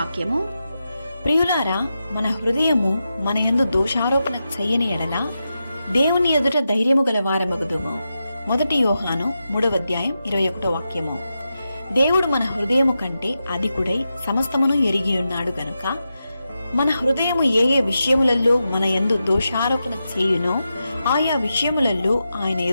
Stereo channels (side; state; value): both; inverted; correlation -0.89